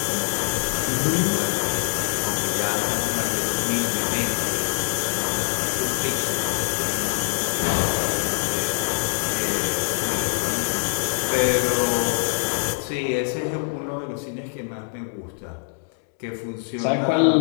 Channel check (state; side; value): silent; right; digital silence